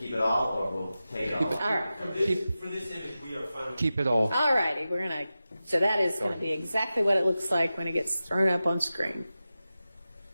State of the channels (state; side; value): inverted; both; correlation -0.93